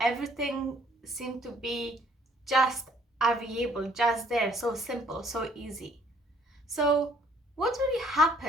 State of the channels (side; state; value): both; normal; correlation 0.61